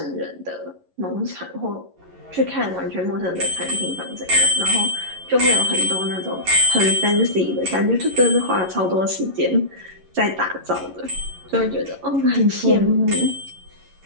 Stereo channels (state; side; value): late; left; 11 ms